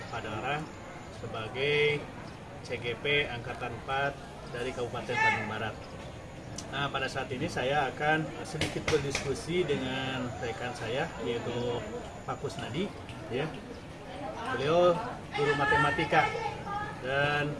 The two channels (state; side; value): identical; both; correlation 1.00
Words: Padalarang sebagai CGP Angkatan 4 dari Kabupaten Bandung Barat. Nah, pada saat ini saya akan sedikit berdiskusi dengan rekan saya, yaitu Pak Kusnadi. Ya. Beliau guru matematika dan